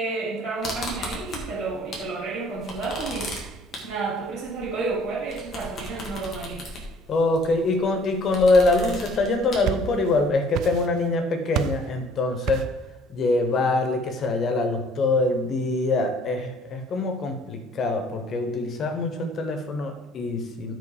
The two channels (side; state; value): both; normal; correlation 0.56